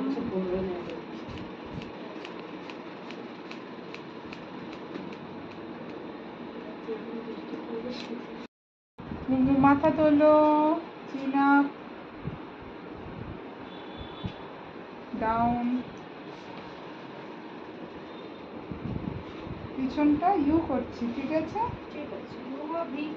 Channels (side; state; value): both; identical; correlation 1.00